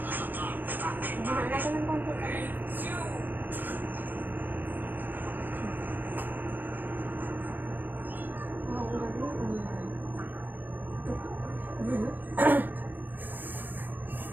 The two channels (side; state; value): left; late; 0.091 ms